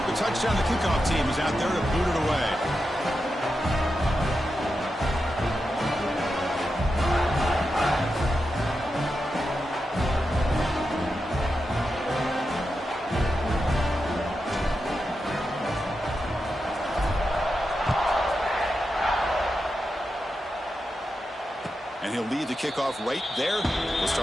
the touchdown, the kickoff team is out there to boot it away. And he'll lead the kickoff right there. We'll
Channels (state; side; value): normal; both; correlation 0.89